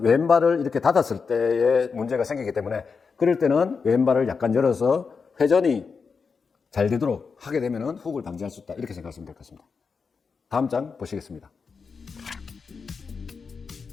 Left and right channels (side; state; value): right; quieter; 5.3 dB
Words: 왼발을 이렇게 닫았을 때에 문제가 생기기 때문에, 그럴 때는 왼발을 약간 열어서 회전이 잘 되도록 하게 되면은 후uk을 방지할 수 있다. 이렇게 생각하시면 될 것 같습니다. 다음 장 보시겠습니다.